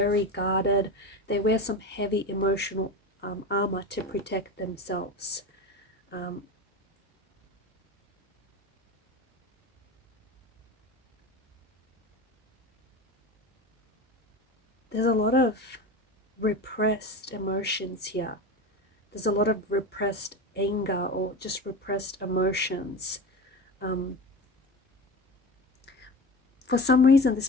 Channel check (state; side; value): normal; both; correlation 0.28